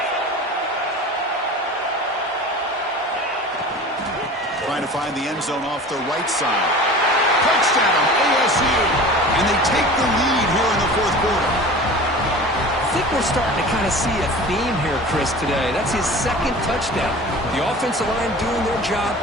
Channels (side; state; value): both; normal; correlation 0.38